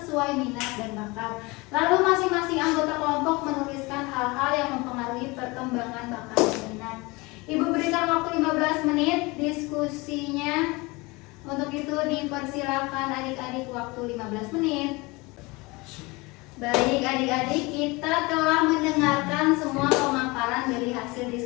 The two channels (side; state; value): right; quieter; 24.5 dB